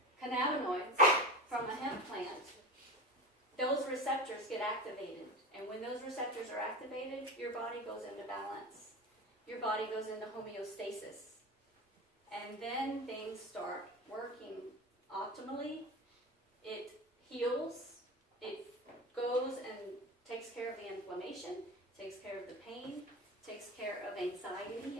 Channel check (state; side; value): normal; both; correlation 0.27